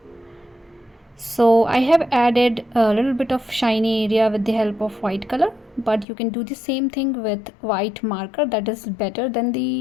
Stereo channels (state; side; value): drops out; right; at 6.1 s